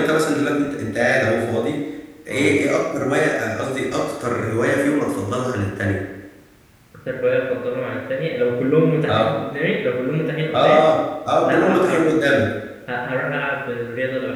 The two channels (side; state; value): both; identical; correlation 1.00